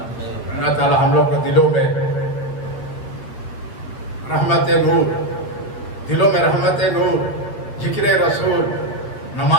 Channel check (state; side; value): late; right; 8.6 ms